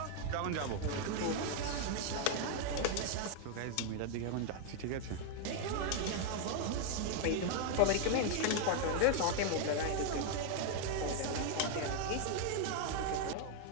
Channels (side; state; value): both; different; correlation 0.01